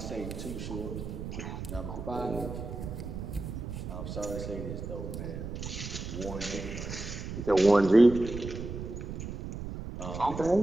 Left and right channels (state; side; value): noise; right; rumble, 7 dB below the sound